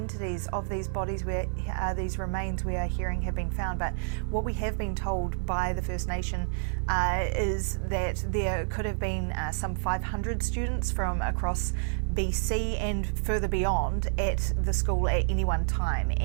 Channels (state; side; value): silent; left; digital silence